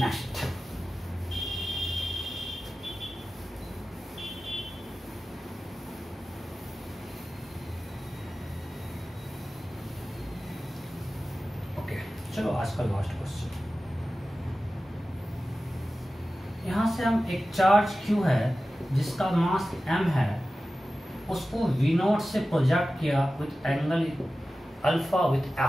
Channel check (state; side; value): normal; both; correlation 0.95